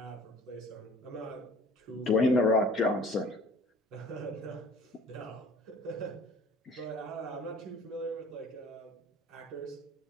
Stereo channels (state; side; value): normal; both; correlation 0.48